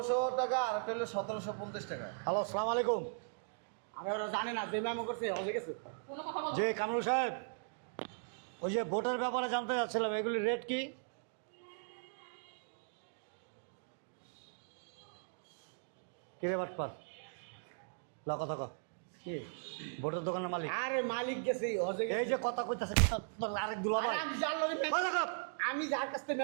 টাকা আর একটা হলো 1750 টাকা। হ্যালো আসসালামু আলাইকুম। আরে ওরা জানে না যে মেমো করছে হসে গেছে। কোনো কথা বল। যে কামরুল সাহেব, ওই যে ভোটের ব্যাপারে জানতে চাচ্ছিলাম, এগুলির রেট কি? কিরে বাটপার ল কথা ক। কি? ভোটের দোকানের মালিক। আরে মালিক গেছে হসে গেছে। এই যে কথা কইতাছে আরেক দুলাভাই। আরে আমি যার লগে কথা কও। আমি যার কাছ থেকে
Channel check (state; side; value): silent; left; digital silence